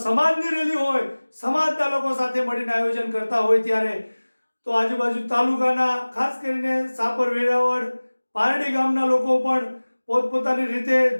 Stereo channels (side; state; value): both; inverted; correlation -1.00